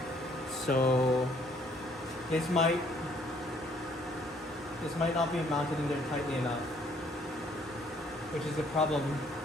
So this might not be mounted in there tightly enough, which is a problem.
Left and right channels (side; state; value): both; normal; correlation 0.63